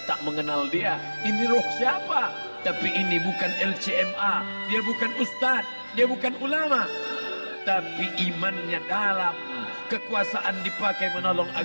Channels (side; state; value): both; inverted; correlation -1.00